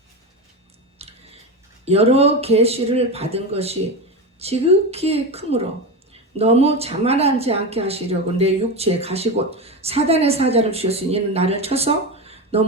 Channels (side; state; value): both; normal; correlation 0.19